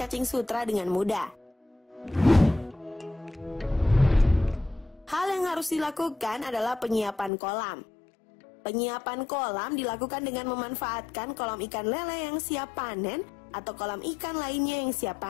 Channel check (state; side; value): drops out; right; at 7.3 s